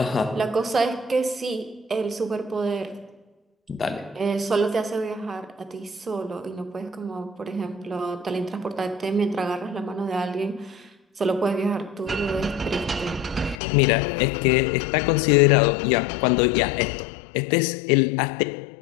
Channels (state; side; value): drops out; right; at 13.6 s